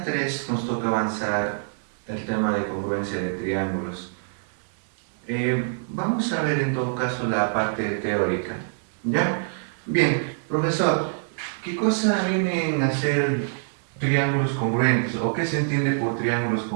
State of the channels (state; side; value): silent; left; digital silence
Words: 3 nos toca avanzar el tema de congruencia de triángulos. Vamos a ver en todo caso la parte teórica, ¿ya? Bien, profesor, ¿qué cosa vienen a ser triángulos congruentes o qué se entiende por triángulos